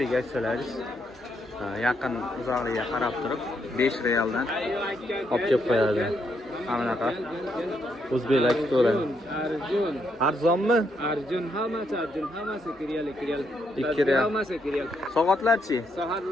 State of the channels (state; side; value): normal; both; correlation 0.77